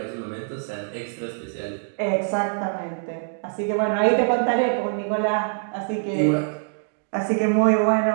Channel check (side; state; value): left; silent; digital silence